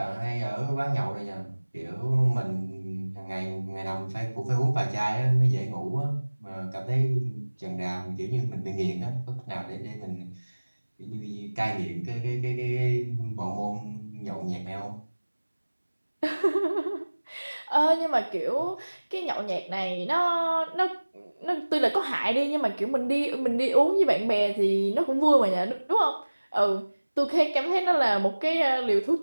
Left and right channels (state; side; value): inverted; both; correlation -1.00